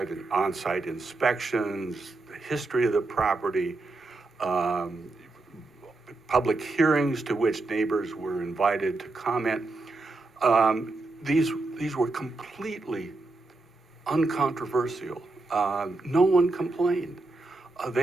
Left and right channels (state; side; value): quieter; left; 3.3 dB